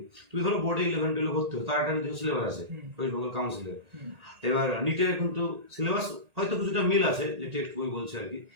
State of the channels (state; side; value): late; left; 1.8 ms